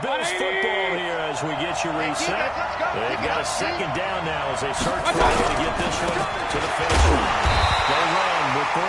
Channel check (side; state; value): both; identical; correlation 1.00